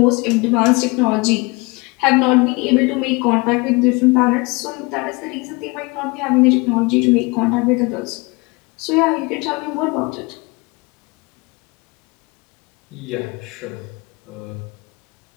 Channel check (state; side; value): quieter; right; 26.8 dB